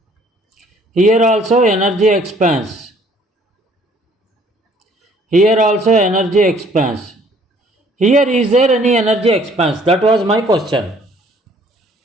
Here also energy expense. Here also energy expense. Here is there any energy expense? That was my question.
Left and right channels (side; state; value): both; normal; correlation 0.59